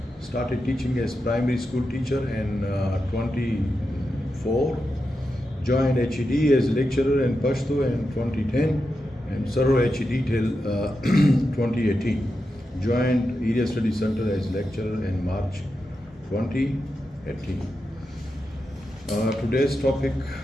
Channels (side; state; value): both; normal; correlation 0.88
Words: Started teaching as primary school teacher in 24. Joined HED as lecturer in Pashto in 2010 and served HED till 2018. Joined Area Study Center as lecturer in March 2018. Today's topic